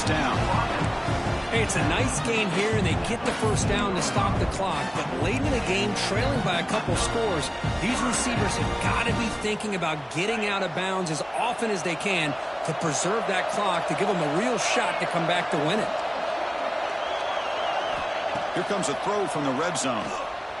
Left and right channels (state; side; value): identical; both; correlation 1.00